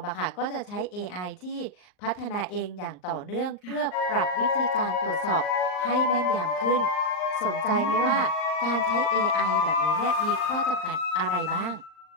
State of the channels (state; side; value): late; right; 39 ms